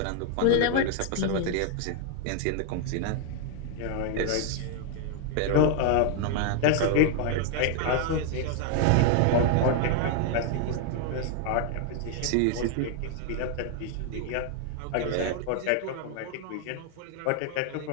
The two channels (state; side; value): different; both; correlation 0.00